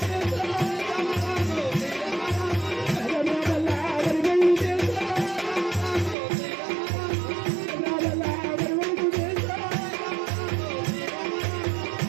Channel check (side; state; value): left; drops out; at 6.2 s